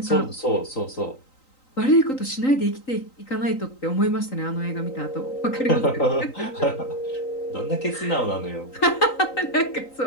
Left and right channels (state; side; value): late; right; 3.9 ms